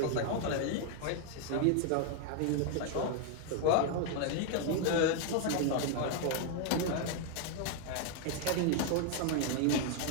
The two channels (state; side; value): different; both; correlation 0.00